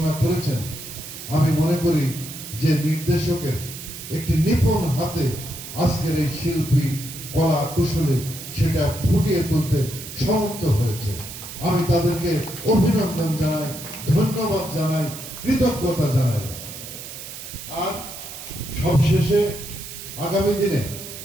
করেছেন, আমি মনে করি যে নির্দেশকের একটি নিপুণ হাতে আজকের এই শিল্পী কলা কুশলে সেটা ফুটিয়ে তুলতে সমর্থ হয়েছে। আমি তাদেরকে অভিনন্দন জানাই, ধন্যবাদ জানাই, কৃতজ্ঞতা জানাই। আর সবশেষে আগামী দিনে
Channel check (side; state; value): right; noise; hiss, 11 dB below the sound